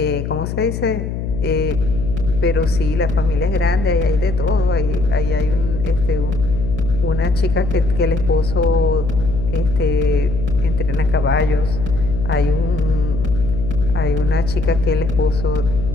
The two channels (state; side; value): noise; left; hum, 5 dB below the sound